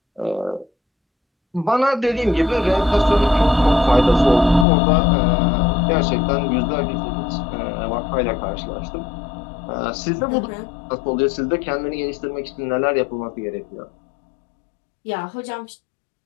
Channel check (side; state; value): right; drops out; at 4.7 s